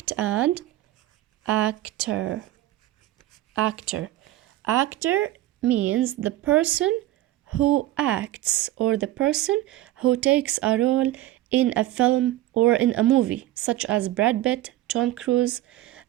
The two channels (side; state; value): left; quieter; 15.0 dB